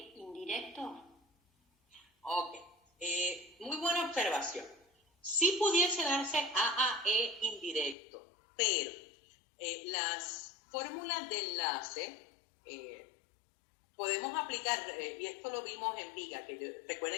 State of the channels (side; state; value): right; drops out; at 8.0 s